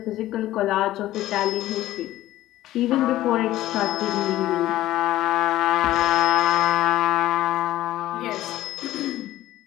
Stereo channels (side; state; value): right; quieter; 14.9 dB